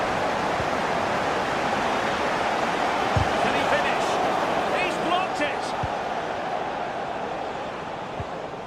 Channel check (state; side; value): identical; both; correlation 1.00